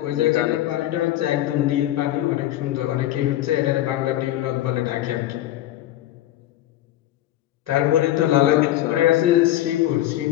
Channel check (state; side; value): quieter; right; 14.2 dB